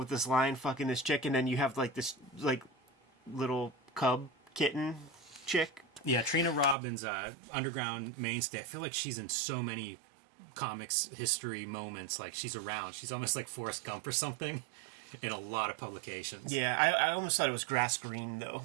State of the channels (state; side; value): drops out; left; at 6.8 s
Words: this lion fucking this chick, and then you have like this like little cub kitten chick. Yeah, Trina Robbins, underground mainstay. I feel like she's in so many comics history moments. Like, she's around. She's almost like Forrest Gump or something in a lot of publications. Yeah, I almost thought it was grass green though.